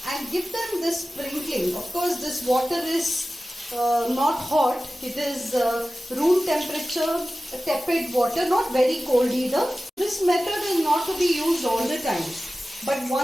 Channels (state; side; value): normal; both; correlation 0.96